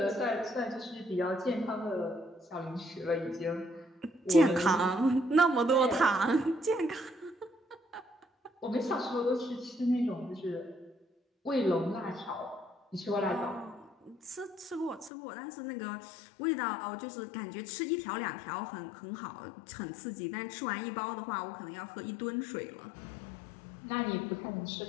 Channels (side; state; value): right; drops out; at 15.1 s